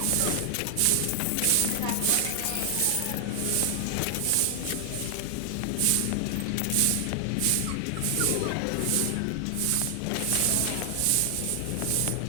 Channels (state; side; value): different; both; correlation 0.00